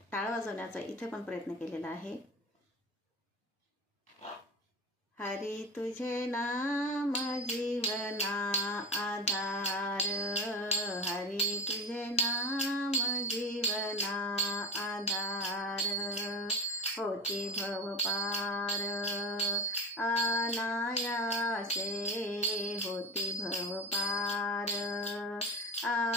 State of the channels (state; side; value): normal; both; correlation 0.27